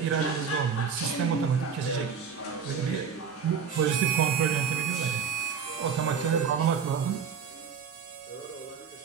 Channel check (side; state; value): left; quieter; 6.6 dB